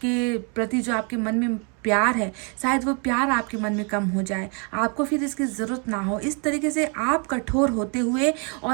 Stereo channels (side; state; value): left; quieter; 36.2 dB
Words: के प्रति जो आपके मन में प्यार है, शायद वो प्यार आपके मन में कम हो जाए, आपको फिर इसकी ज़रूरत ना हो। इस तरीके से आप कठोर होते हुए